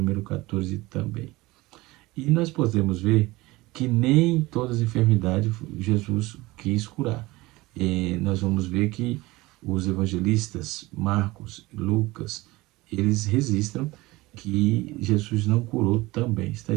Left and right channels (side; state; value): left; quieter; 20.5 dB